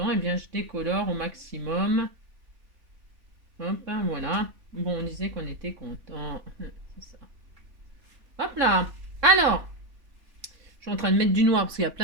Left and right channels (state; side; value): late; left; 3.5 ms